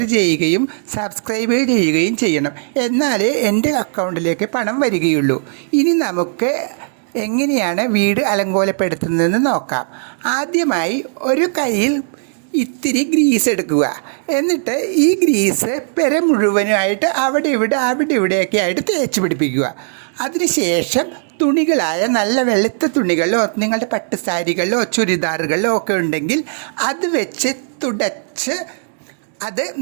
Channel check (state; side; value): silent; left; digital silence